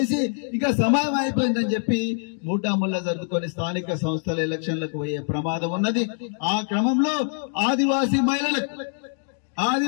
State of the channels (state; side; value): silent; right; 60 dB below the other